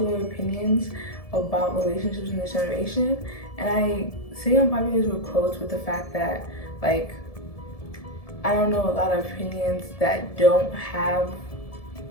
opinions about relationships in this generation. And I say unpopular with quotes with the fact that, like, I don't know a lot of opinions that don't have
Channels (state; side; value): late; right; 1.7 ms